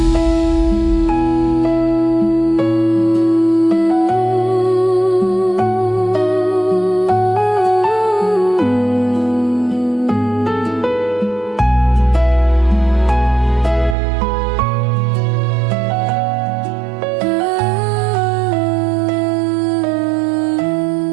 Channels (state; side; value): drops out; left; at 14.0 s